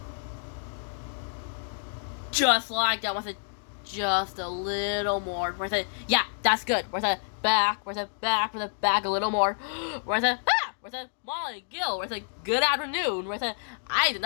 Just like that, where's it just a little more? Where's it? Yeah, that's good. Where's it? Back, where's it? Back, where's it? Back a little more. Where's it? Ah! Where's it? Molly, Gil, where's it? Good afternoon. Where's it? I did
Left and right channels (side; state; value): right; silent; digital silence